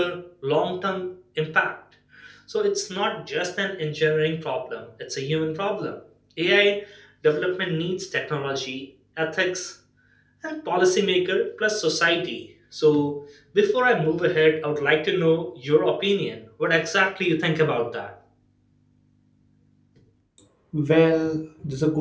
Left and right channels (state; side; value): identical; both; correlation 1.00